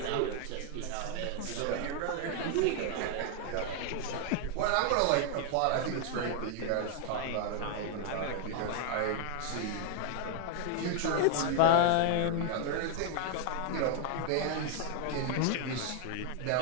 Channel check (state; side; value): different; both; correlation 0.00